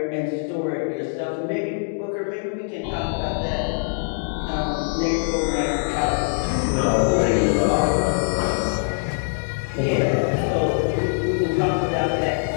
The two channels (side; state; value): right; silent; digital silence